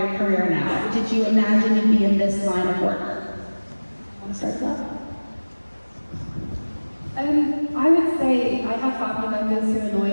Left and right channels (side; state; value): both; inverted; correlation -1.00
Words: career now? Did you imagine you'd be in this line of work? Want to start with that? I would say I have family members who are